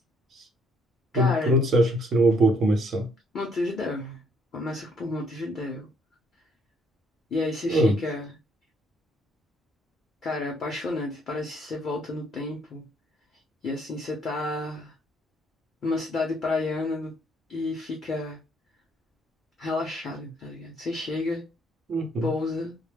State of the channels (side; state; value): both; normal; correlation 0.67